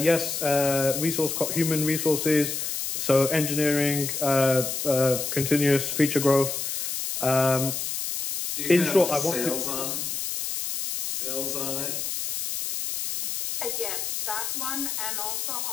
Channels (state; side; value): noise; left; hiss, 3 dB below the sound